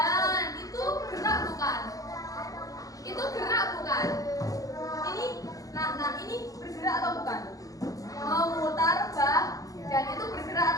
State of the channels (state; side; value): late; right; 0.17 ms